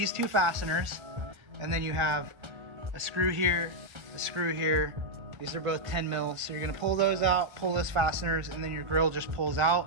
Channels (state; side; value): late; left; 1.3 ms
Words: 2 fasteners, and then you have a screw here, a screw here. These are both 10 mils. So you're gonna pull those out, pull those fasteners, and then your grill just pulls